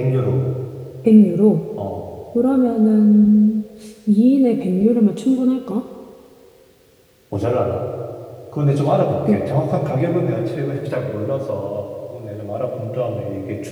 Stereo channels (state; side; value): identical; both; correlation 1.00